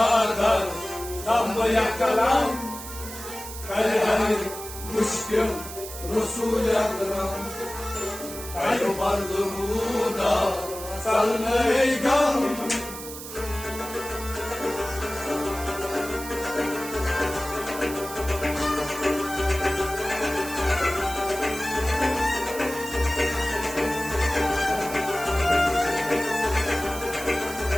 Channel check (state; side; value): noise; right; hiss, 11 dB below the sound